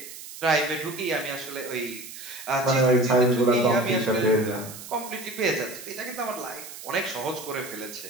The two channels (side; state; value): right; noise; hiss, 13 dB below the sound